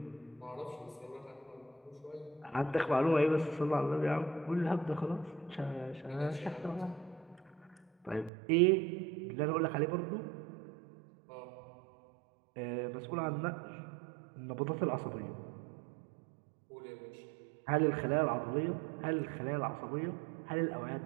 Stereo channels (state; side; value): drops out; left; at 8.3 s